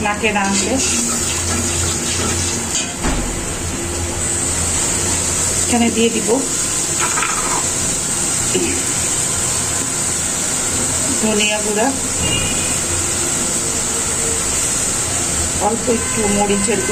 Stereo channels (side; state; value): both; identical; correlation 1.00